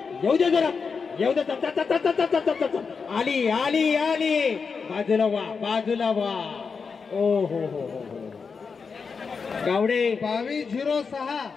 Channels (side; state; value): right; quieter; 5.3 dB